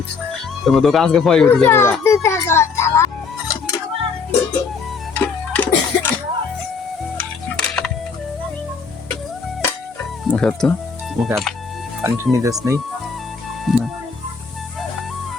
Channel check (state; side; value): quieter; right; 5.1 dB